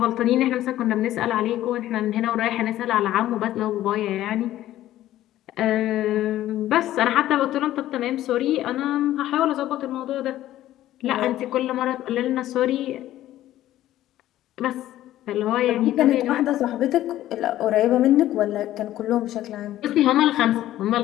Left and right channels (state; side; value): quieter; right; 13.8 dB